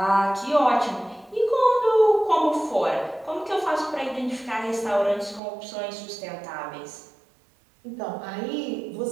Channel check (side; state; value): left; drops out; at 5.4 s